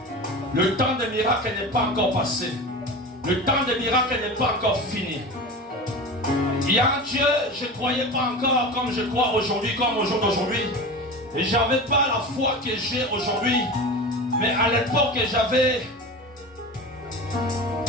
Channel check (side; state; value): both; normal; correlation 0.30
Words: Le temps des miracles n'est pas encore passé. Le temps des miracles n'est pas encore fini. Il y a un Dieu, je ne croyais pas encore comme je crois aujourd'hui, comme au jour d'aujourd'hui. Et je n'avais pas la foi que j'ai aujourd'hui. Mais à l'époque, j'avais